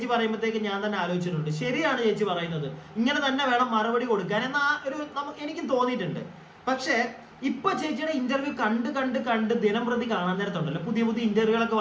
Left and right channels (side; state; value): both; identical; correlation 1.00